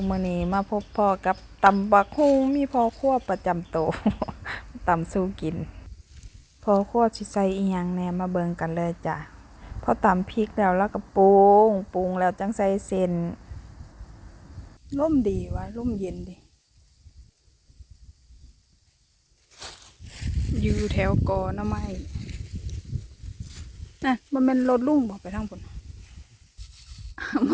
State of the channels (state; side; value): identical; both; correlation 1.00